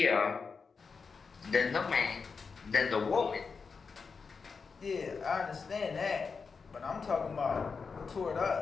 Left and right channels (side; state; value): right; quieter; 5.1 dB